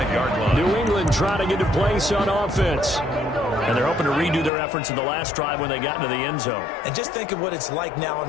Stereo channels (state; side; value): drops out; right; at 4.5 s